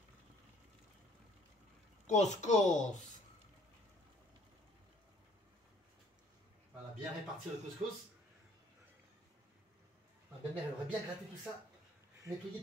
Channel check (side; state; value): both; normal; correlation 0.59